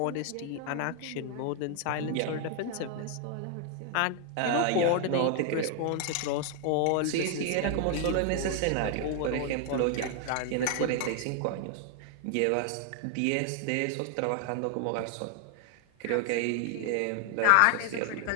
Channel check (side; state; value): both; different; correlation 0.00